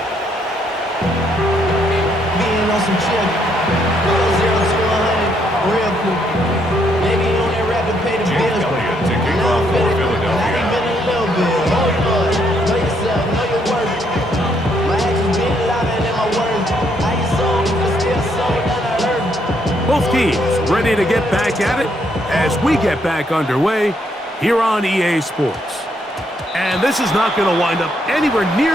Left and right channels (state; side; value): normal; both; correlation 0.73